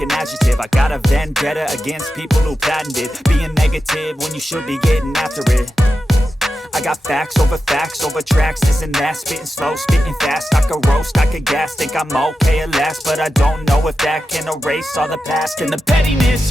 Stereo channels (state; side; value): normal; both; correlation 0.91